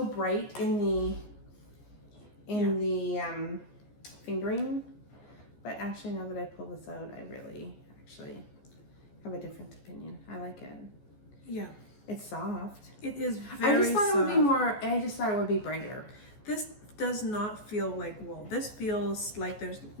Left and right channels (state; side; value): late; right; 14 ms